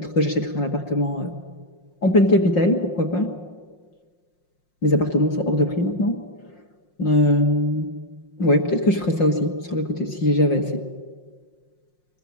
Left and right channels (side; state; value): right; late; 5.6 ms